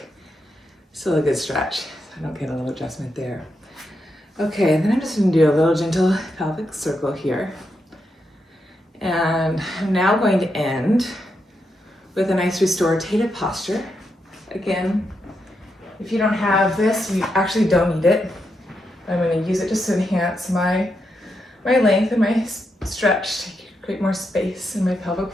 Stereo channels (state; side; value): normal; both; correlation 0.83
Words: Still a good stretch. I don't get a little adjustment there. Okay, and then I'm just gonna do a little gentle pelvic circle here. And I'm now going to end with a nice restorative posture. Again, if you don't have this, you actually don't need it. I'm going to use it just to enhance my length and my stretch to create more space in my pelvic